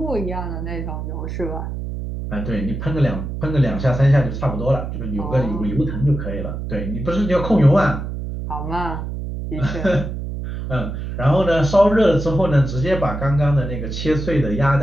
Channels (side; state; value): right; noise; hum, 6 dB below the sound